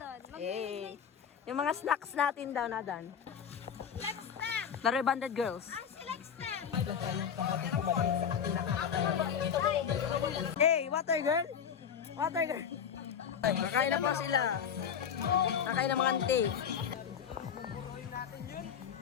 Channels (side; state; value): right; quieter; 7.7 dB